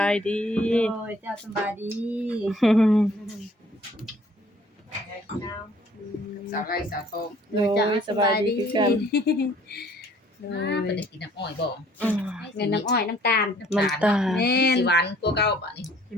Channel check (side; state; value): both; normal; correlation 0.57